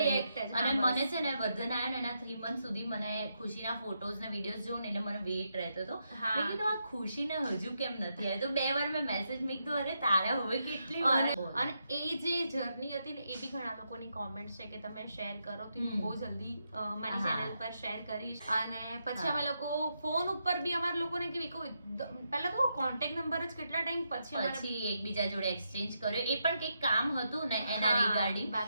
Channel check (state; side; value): inverted; both; correlation -0.82